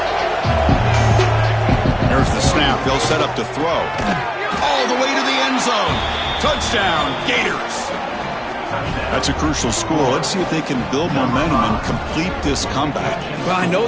There's the snap. They'll set up to throw. All the way to the end zone. Touchdown, Gators. That's a crucial score. Let's see if they can build momentum and complete this comeback. Well, I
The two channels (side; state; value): both; identical; correlation 1.00